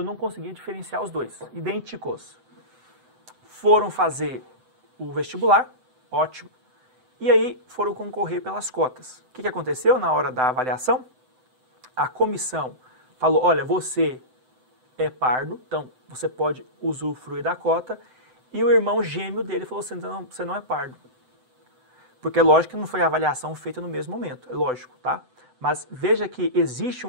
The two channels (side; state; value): left; late; 7.9 ms